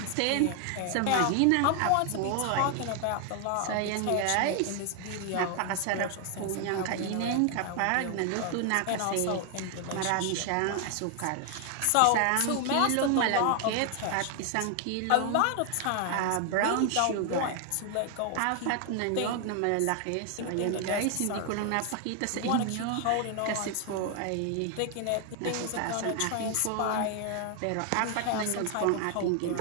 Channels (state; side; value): different; both; correlation 0.00